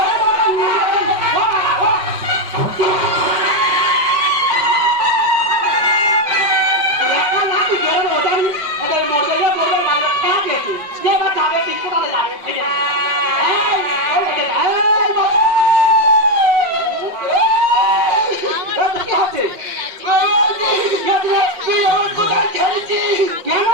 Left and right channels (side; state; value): left; late; 5.4 ms